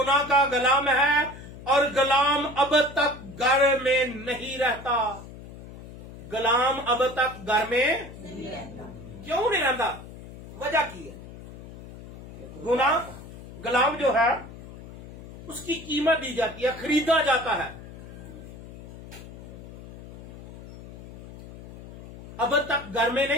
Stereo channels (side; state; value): left; noise; hum, 15 dB below the sound